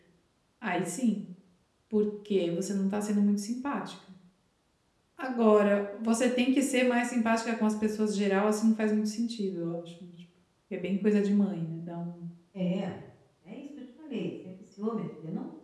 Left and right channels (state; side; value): identical; both; correlation 1.00